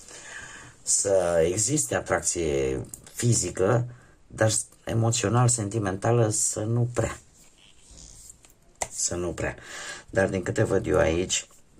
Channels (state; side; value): identical; both; correlation 1.00